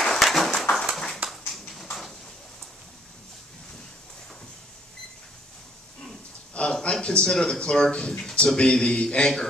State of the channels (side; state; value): both; normal; correlation 0.64